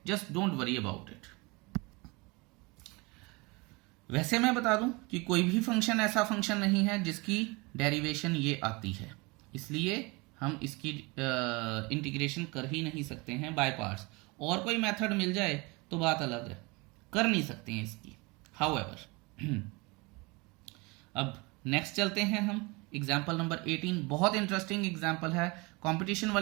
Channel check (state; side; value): quieter; left; 26.2 dB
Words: just don't worry about it. वैसे मैं बता दूं कि कोई भी फंक्शन ऐसा फंक्शन नहीं है जिसकी डेरिवेशन ये आती है, इसलिए हम इसकी इंटीग्रेशन कर ही नहीं सकते हैं बाय पार्ट्स। और कोई मेथड मिल जाए तो बात अलग है, कर नहीं सकते हैं इसकी। हाउएवर अब नेक्स्ट चलते हैं हम एग्जाम्पल नंबर 18। बहुत इंटरेस्टिंग एग्जाम्पल है, कंपटीशन